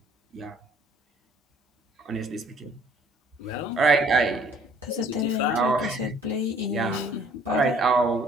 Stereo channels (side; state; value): both; normal; correlation 0.58